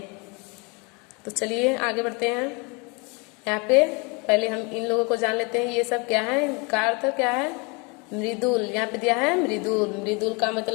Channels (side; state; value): right; quieter; 30.3 dB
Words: तो चलिए आगे बढ़ते हैं। यहाँ पे पहले हम इन लोगों को जान लेते हैं। ये सब क्या है, इनका अर्थ क्या है? मृदुल। यहाँ पे दिया है मृदुल। मृदुल का